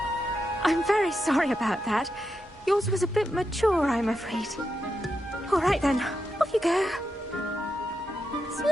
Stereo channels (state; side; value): normal; both; correlation 0.86